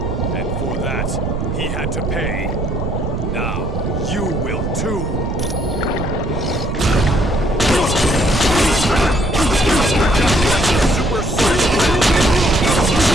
and for that, he had to pay. Now, you will too.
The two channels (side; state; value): right; noise; rumble, 2 dB below the sound